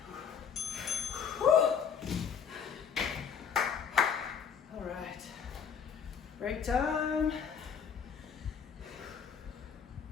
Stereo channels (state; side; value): quieter; right; 7.0 dB